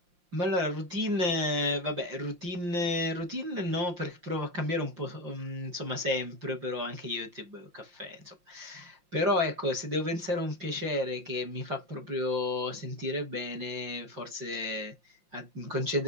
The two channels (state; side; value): late; left; 5.7 ms